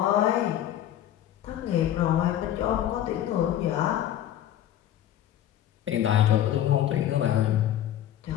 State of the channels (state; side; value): quieter; right; 11.6 dB